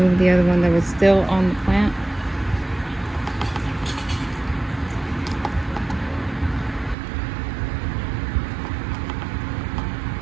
the other one that was still on the plant.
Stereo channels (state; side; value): drops out; left; at 7.0 s